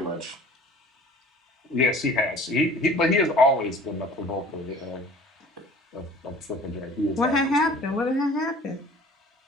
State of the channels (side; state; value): both; normal; correlation 0.47